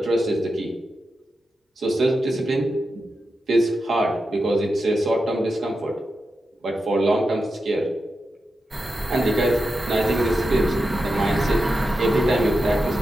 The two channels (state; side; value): normal; both; correlation 0.89